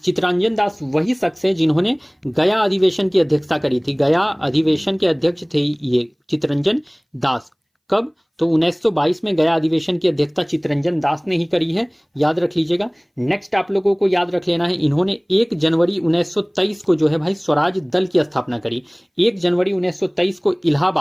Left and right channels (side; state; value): both; identical; correlation 1.00